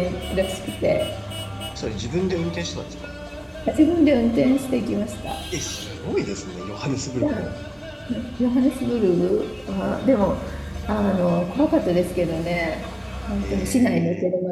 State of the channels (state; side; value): identical; both; correlation 1.00